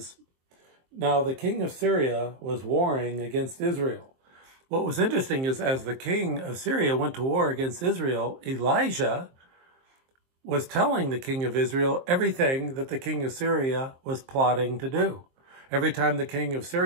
"Now the king of Syria was warring against Israel." What was interesting is as the king of Syria went to war against Israel, Elijah was telling the king of Israel everything that the king of Syria was plotting to do. Every time the king of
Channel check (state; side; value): late; left; 23 ms